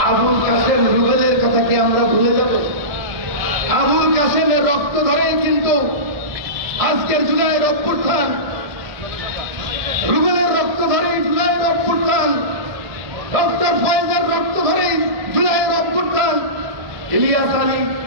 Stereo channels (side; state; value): left; late; 1.7 ms